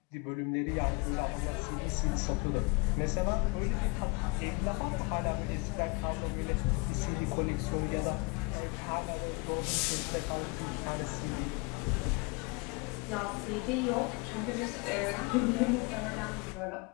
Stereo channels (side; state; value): right; quieter; 28.5 dB